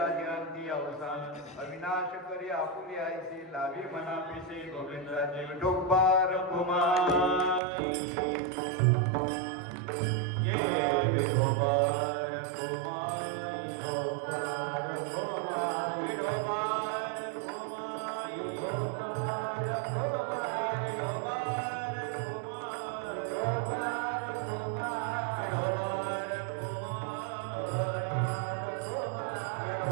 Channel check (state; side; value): drops out; left; at 7.6 s